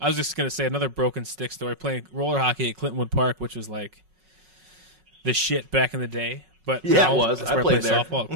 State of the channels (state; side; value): late; left; 5.4 ms